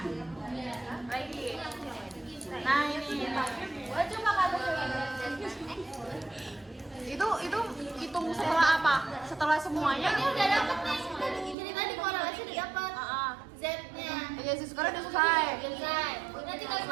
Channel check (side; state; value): left; drops out; at 11.6 s